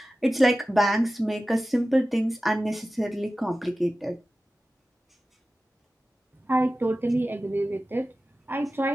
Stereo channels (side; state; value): both; normal; correlation 0.95